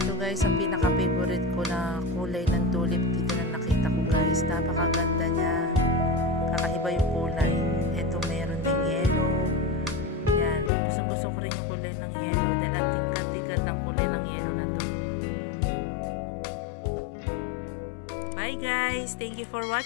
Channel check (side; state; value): right; drops out; at 10.7 s